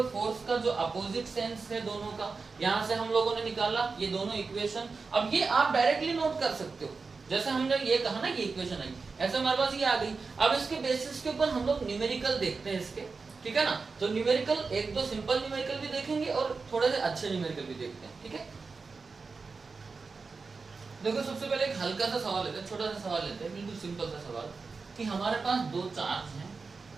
फोर्स का जो अपोजिट सेंस है दोनों का, यहां से हम लोगों ने निकाला ये दोनों इक्वेशन। अब ये आप डायरेक्टली नोट कर सकते हो, जैसे हमने ये कहा ना ये इक्वेशन आई, ऐसे हमारे पास ये आ गई। अब इसके बेसिस के ऊपर हम लोग न्यूमेरिकल देखते हैं इसके, ठीक है ना? तो न्यूमेरिकल एक दो सिंपल न्यूमेरिकल भी देखेंगे और थोड़े से अच्छे न्यूमेरिकल भी देखते हैं, ठीक है? देखो सबसे पहले एक हल्का सा सवाल लेते हैं, छोटा सा सवाल लेते हैं, बिल्कुल सिंपल सा सवाल कि हमारे पास दो चार्ज हैं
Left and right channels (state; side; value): quieter; left; 4.5 dB